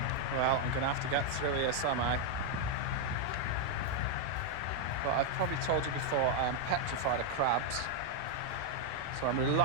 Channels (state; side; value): different; both; correlation 0.00